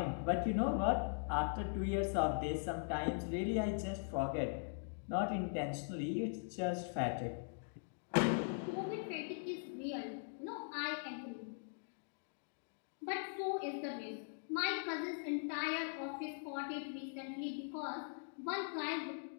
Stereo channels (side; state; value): right; silent; digital silence